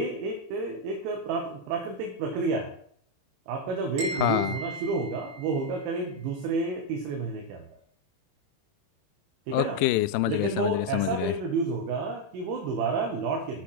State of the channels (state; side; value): late; left; 22 ms